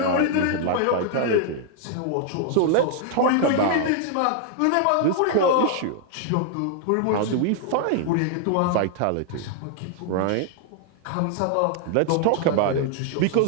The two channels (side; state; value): both; different; correlation 0.00